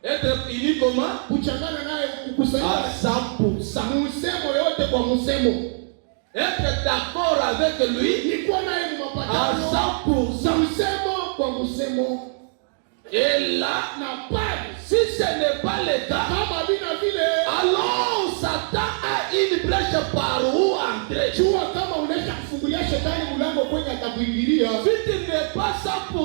Être unis comment? Kuchangana naye À kukusanyika 100%. msemo yote kwa msemo. Être d'accord avec lui Ni kwa naye à mapatano 100%. msemo kwa msemo. Et là, Na pale si ce n'est pas le cas, kama bina vile, alors Satan a une brèche par où entrer. jua kama unaisha kufungulia shetani mlango kwenye atakuingilia. Si tu n'es pas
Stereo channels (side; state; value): left; silent; 62 dB below the other